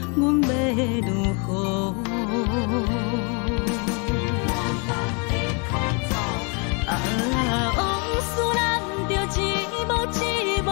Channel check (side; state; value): right; quieter; 34.5 dB